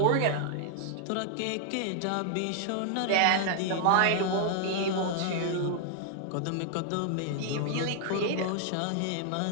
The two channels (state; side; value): different; both; correlation 0.00